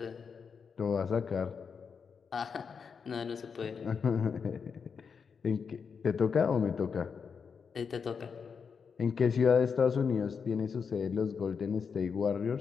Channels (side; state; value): right; quieter; 6.0 dB